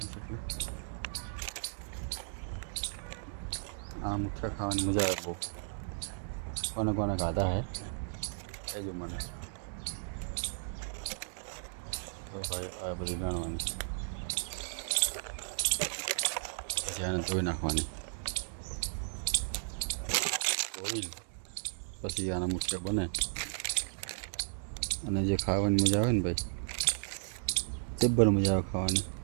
છે. એટલે આ મુઠિયા ખાવાની મજા આવે બહુ. કોને કોને ખાધા હે કહેજો મને. ભાઈ આ બધી વેણવાની એને ધોઈ નાખવાની, પછી આના મુઠિયા બને. અને જે ખાવાની મજા આવે ને ભાઈ, જબ્બર મજા આવે ખાવાની.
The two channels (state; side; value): silent; left; digital silence